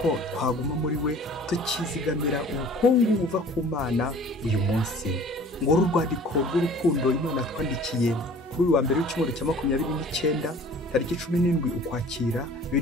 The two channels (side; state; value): both; normal; correlation 0.48